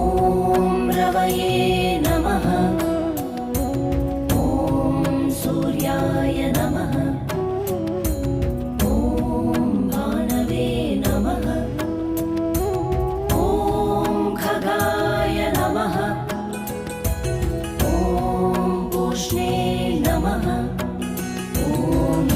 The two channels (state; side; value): identical; both; correlation 1.00